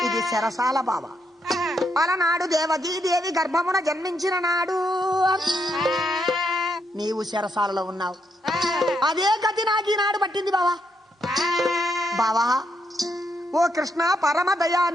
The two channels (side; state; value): both; normal; correlation 0.78